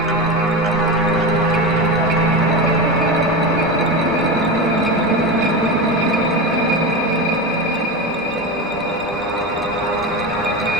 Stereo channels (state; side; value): normal; both; correlation 0.21